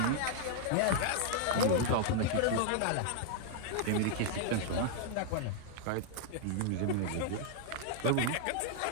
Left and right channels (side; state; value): both; different; correlation -0.01